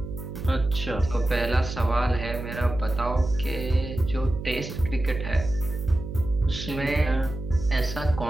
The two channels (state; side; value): noise; right; hum, 8 dB below the sound